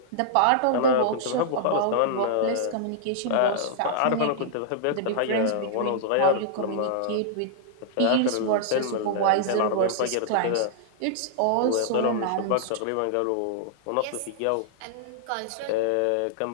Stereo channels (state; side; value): different; both; correlation -0.01